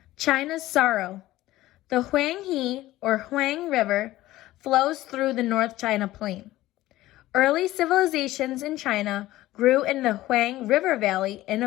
China's sorrow. The Huang River flows through the North China Plain. Early civilizations in China grew in the Huang River Valley in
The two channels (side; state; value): right; quieter; 16.2 dB